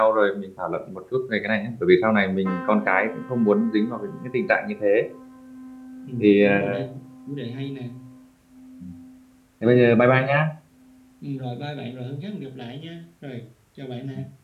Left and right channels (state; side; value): identical; both; correlation 1.00